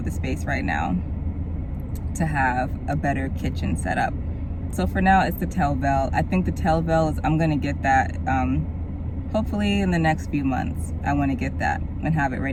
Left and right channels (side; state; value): both; identical; correlation 1.00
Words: the space right now to have a better kitchen set up. So for now, it's the Telvale. I think the Telvale is, I'm gonna get that, hopefully in the next few months. I wanna get that and have it